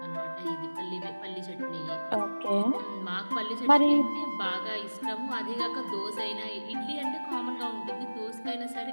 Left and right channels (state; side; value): inverted; both; correlation -1.00